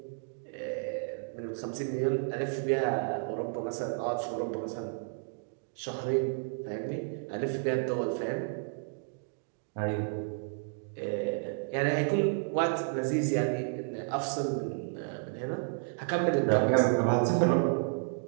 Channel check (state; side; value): silent; left; digital silence